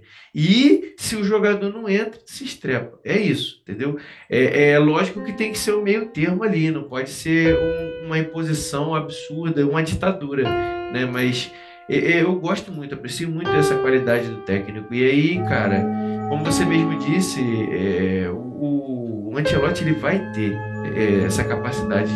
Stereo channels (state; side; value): identical; both; correlation 1.00